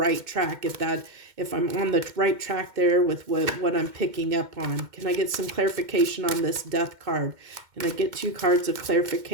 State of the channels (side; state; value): left; late; 2.1 ms